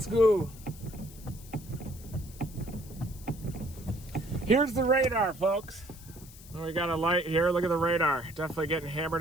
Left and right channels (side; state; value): left; noise; hiss, 19 dB below the sound